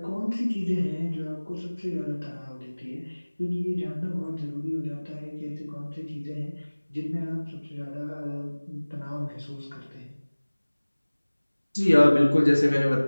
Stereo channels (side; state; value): both; inverted; correlation -1.00